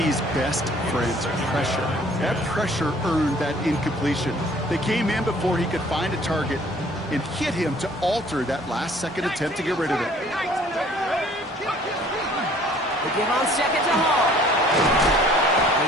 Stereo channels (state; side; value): normal; both; correlation 0.55